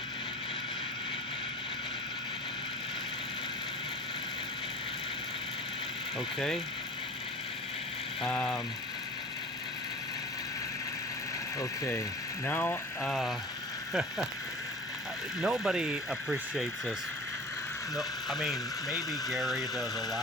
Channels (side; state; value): both; normal; correlation 0.39